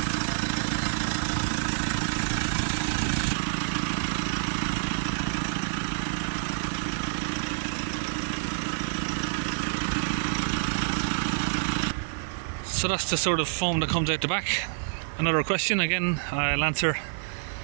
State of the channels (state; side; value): silent; left; digital silence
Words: So that's the sort of foam that comes out the back. Another question again, I'll answer.